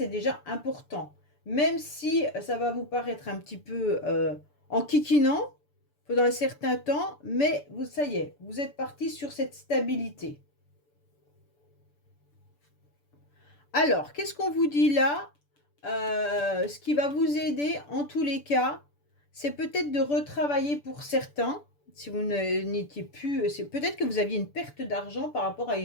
déjà important. Même si ça va vous paraître un petit peu enquiquinant pendant un certain temps, mais ça y est, vous êtes parti sur cette stabilité. Alors, qu'est-ce qu'on vous dit là? Ce qui va vous aider en tous les cas, c'est peut-être de retravailler pour certains. Si vous n'étiez plus, c'est peut-être que vous aviez une perte d'argent par rapport à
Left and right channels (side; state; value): right; late; 6.9 ms